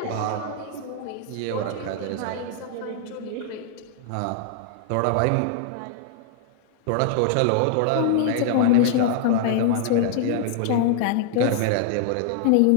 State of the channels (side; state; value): both; different; correlation -0.01